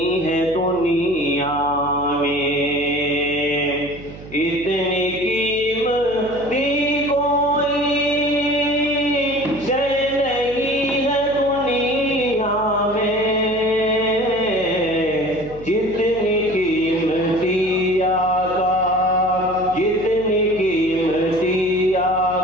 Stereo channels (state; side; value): noise; right; hum, 16 dB below the sound